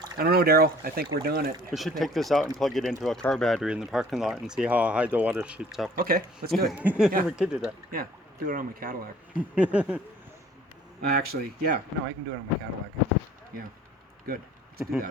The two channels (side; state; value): both; normal; correlation 0.53